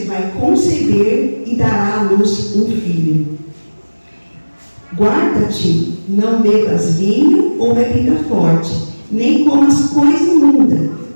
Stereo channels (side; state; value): both; inverted; correlation -1.00